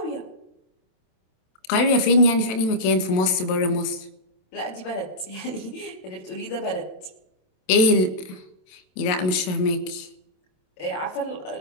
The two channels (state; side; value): late; right; 27 ms